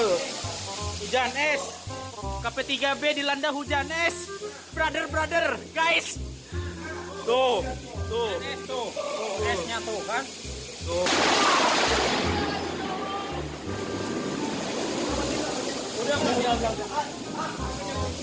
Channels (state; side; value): identical; both; correlation 1.00